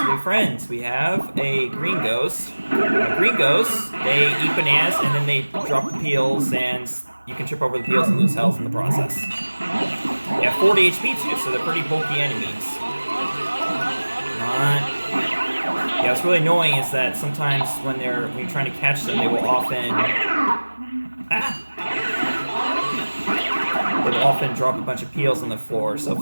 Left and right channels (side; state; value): both; inverted; correlation -1.00